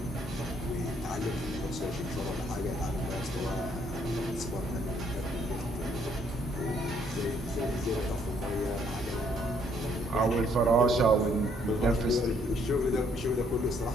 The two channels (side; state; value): both; normal; correlation 0.67